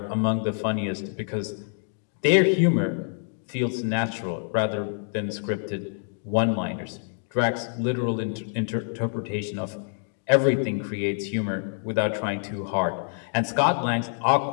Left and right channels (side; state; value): right; silent; 61 dB below the other